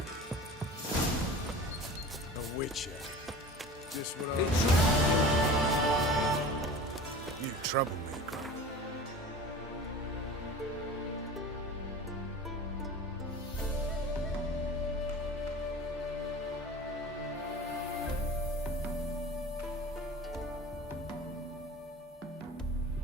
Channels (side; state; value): both; normal; correlation 0.37